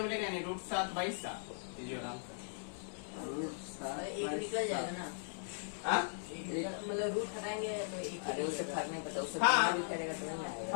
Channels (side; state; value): right; silent; digital silence